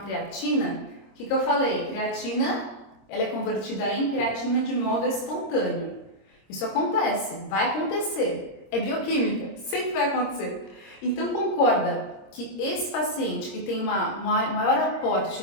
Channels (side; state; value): right; late; 26 ms